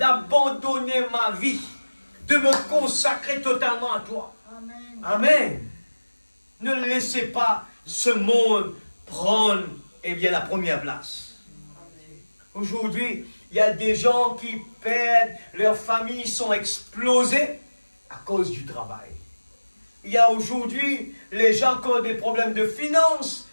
ma vie, de me consacrer totalement à toi. Amen. Amen. Ne laissez pas ce monde prendre la première place. Aujourd'hui, il y a des gens qui perdent, leurs familles sont explosées à cause du travail. Il y a aujourd'hui, les gens qui ont des problèmes de finances,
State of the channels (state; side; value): inverted; both; correlation -1.00